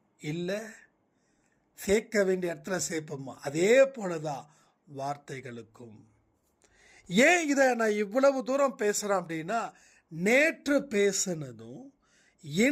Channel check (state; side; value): identical; both; correlation 1.00